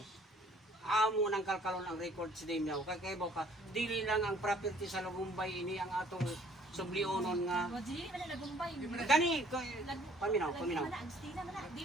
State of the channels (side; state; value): both; normal; correlation 0.57